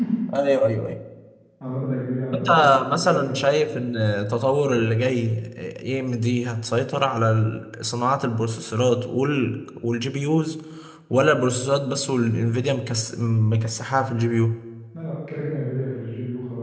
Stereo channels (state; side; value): identical; both; correlation 1.00